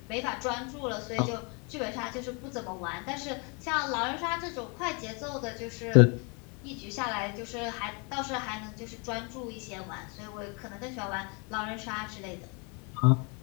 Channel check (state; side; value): quieter; right; 33.5 dB